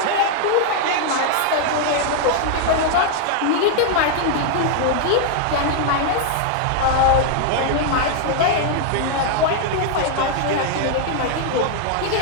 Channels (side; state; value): both; different; correlation 0.00